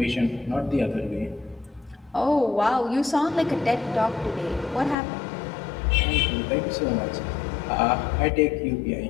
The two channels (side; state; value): right; drops out; at 5.0 s